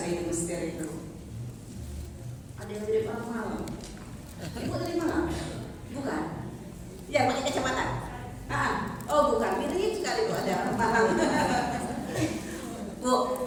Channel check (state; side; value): identical; both; correlation 1.00